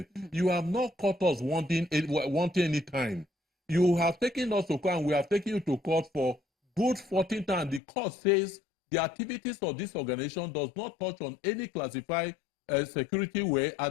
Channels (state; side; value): drops out; right; at 7.8 s